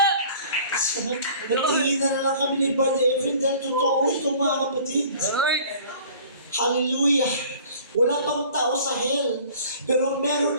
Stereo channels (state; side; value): inverted; both; correlation -0.48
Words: Nagtingin na lang kami ni Brother Efren dahil totoo ito, mga kapatid. Lord. Hallelujah! Wala pang tao sa hell, pero meron